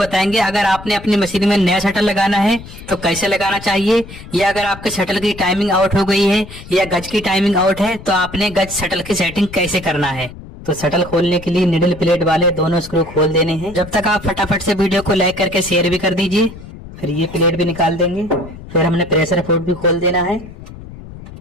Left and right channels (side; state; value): left; noise; rumble, 15 dB below the sound